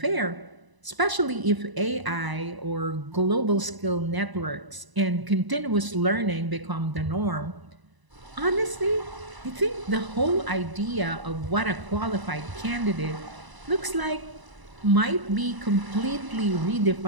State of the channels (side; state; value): left; late; 1.0 ms